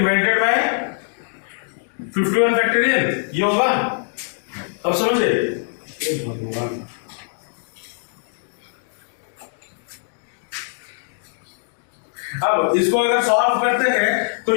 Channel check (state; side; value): silent; right; digital silence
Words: by 51 factorial, ये होगा। अब समझे, भगवान अब इसको अगर सॉल्व करते हैं तो